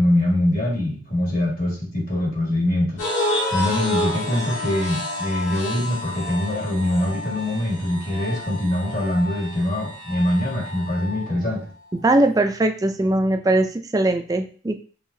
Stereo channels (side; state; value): both; normal; correlation 0.74